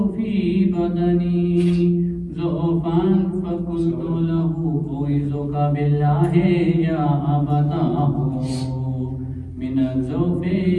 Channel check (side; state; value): both; identical; correlation 1.00